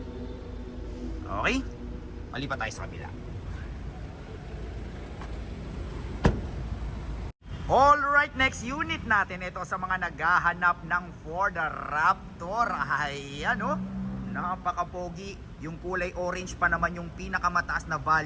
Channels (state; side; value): identical; both; correlation 1.00